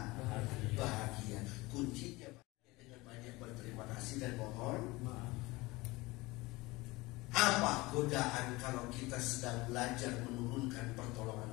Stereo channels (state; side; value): quieter; right; 21.8 dB